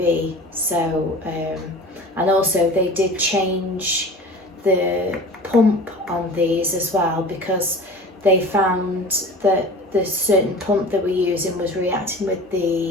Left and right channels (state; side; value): normal; both; correlation 0.39